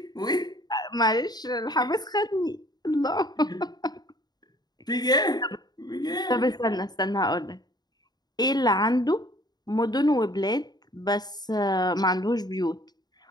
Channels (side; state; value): right; late; 0.20 ms